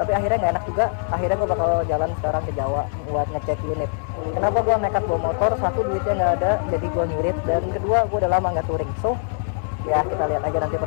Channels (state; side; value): silent; right; digital silence